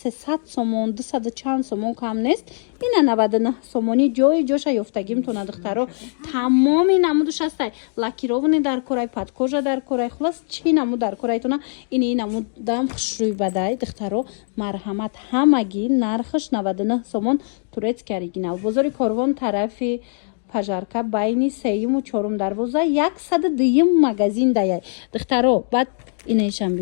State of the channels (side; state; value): right; silent; 65 dB below the other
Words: 300 сомон 200 чанд сомон кам нест ина 99 сомони ҷои ҷоша ёфтагӣ метавона духтаро тамоми намудаш ҳастай лакировани дар корай падкожа дар корай хулас чӣ намуд дар корайтона ини намудам хушрӯй бадай духтаро марҳамат ҳамагӣ нархаш 99 сомон турецки оригинал бозори Корвон тарафи пажарка байни 3-ю 4-ум дарвоза 102 магазин даяй духтаро баъд инешам